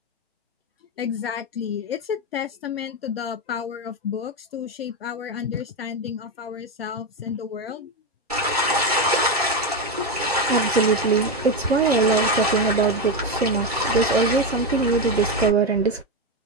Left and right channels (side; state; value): both; normal; correlation 0.11